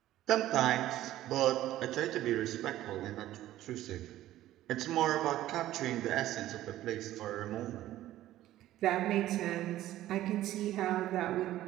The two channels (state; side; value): quieter; left; 14.2 dB